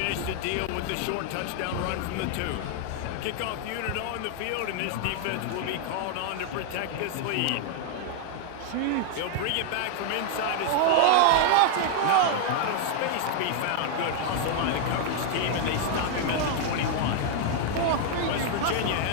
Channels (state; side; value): different; both; correlation 0.00